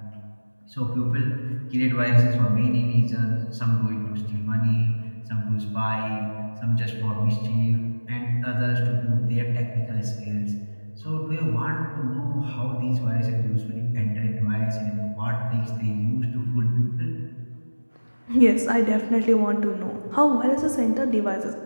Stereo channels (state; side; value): inverted; both; correlation -1.00